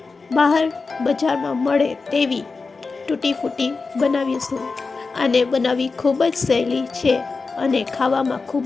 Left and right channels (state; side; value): quieter; right; 4.3 dB